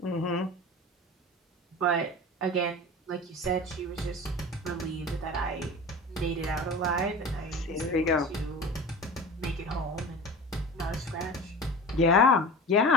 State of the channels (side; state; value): both; normal; correlation 0.34